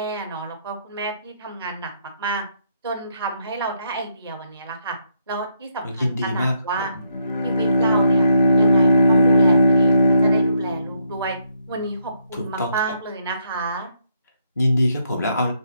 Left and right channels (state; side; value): inverted; both; correlation -0.75